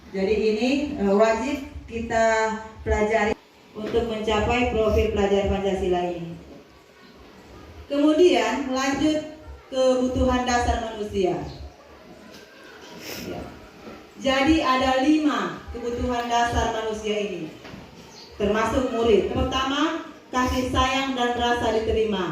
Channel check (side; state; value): both; identical; correlation 1.00